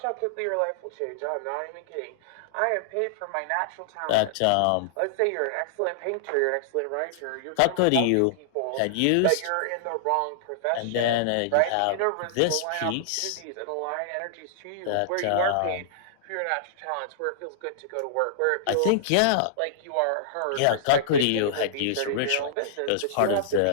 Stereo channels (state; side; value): different; both; correlation -0.01